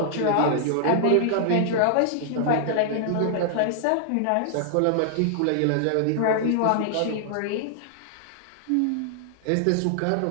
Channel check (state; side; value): different; both; correlation -0.01